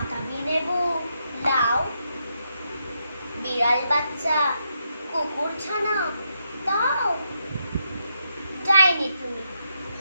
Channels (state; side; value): inverted; both; correlation -0.81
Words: লেবু লাও। বিড়াল বাচ্চা কুকুর ছানা দাও। যায়নি তুমি